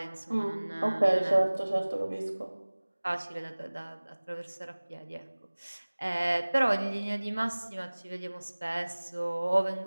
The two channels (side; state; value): both; inverted; correlation -1.00